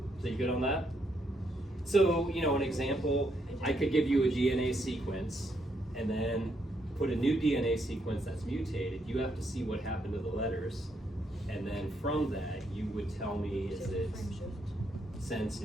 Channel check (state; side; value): normal; both; correlation 0.76